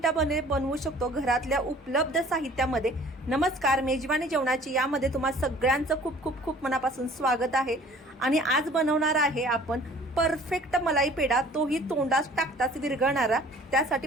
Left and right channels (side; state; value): both; normal; correlation 0.51